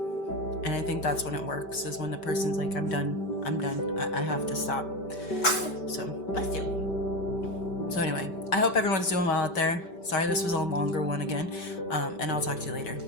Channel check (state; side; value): late; right; 5.2 ms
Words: And I think that's when it works, is when the person's like, I'm done. I have to stop. So, bless you. So anyway, I hope everyone's doing well out there. Sorry this was a longer one again. And I'll talk to you later.